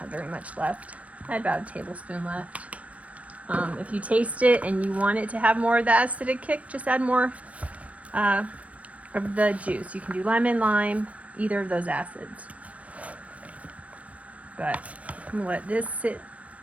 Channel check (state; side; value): late; left; 0.066 ms